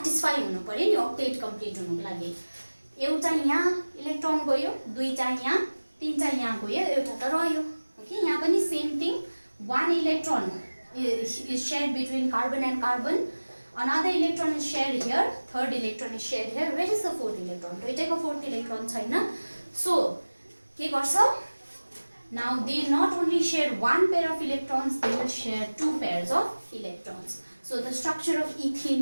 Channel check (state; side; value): inverted; both; correlation -1.00